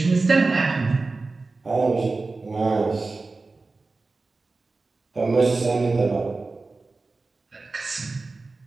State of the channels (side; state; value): left; quieter; 3.7 dB